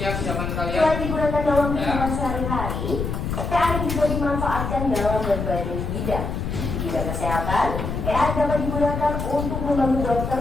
zaman kalian. selain digunakan dalam Ya. kehidupan sehari-hari, AI juga dimanfaatkan dalam berbagai bidang. Di bidang kesehatan, AI dapat digunakan untuk membantu dokter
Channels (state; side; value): noise; left; rumble, 3 dB below the sound